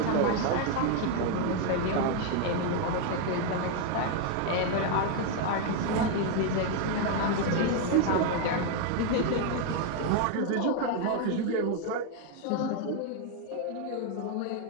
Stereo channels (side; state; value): both; different; correlation 0.01